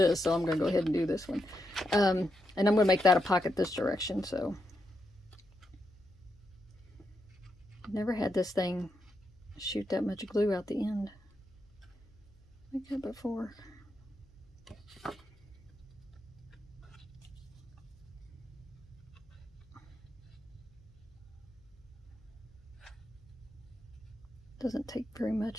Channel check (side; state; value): left; noise; hum, 28 dB below the sound